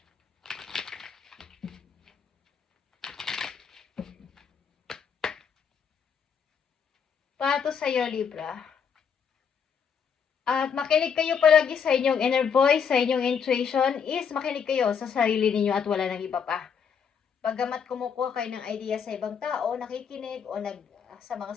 Para to sa iyo, Libra. At makinig kayo palagi sa inyong inner voice, sa inyong intuition, is makinig kayo sa sarili ninyo at wala nang iba pa. Paggamat kumukuha kayo ng idea sa ibang tao, nakikinig o sa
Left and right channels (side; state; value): right; quieter; 7.0 dB